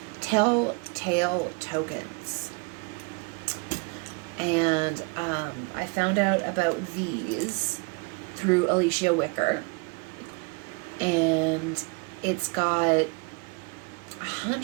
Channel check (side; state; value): left; quieter; 32.4 dB